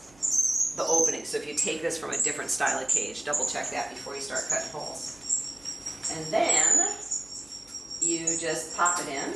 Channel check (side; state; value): right; noise; hum, 27 dB below the sound